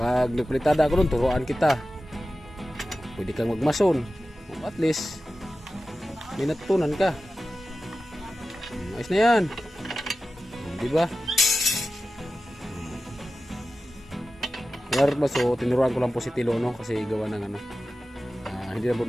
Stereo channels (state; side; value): normal; both; correlation 0.94